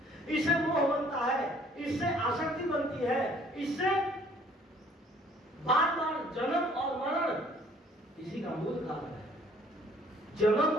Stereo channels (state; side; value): normal; both; correlation 0.58